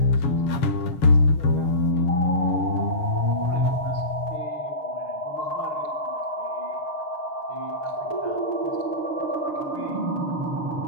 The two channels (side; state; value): right; late; 6.6 ms